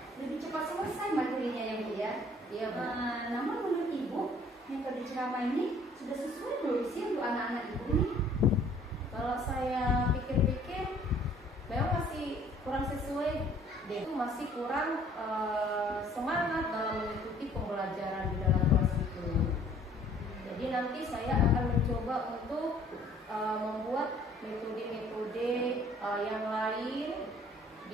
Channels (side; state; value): both; normal; correlation 0.56